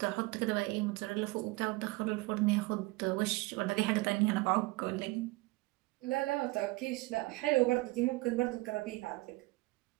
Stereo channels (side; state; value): left; quieter; 22.5 dB